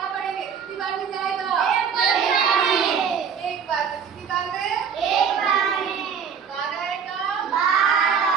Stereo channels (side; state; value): left; quieter; 6.9 dB